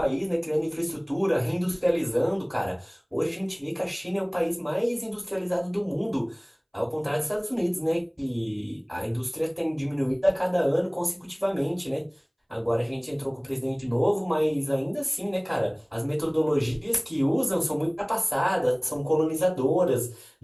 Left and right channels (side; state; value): both; identical; correlation 1.00